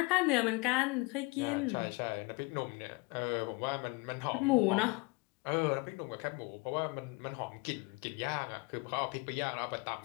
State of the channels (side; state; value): right; quieter; 26.8 dB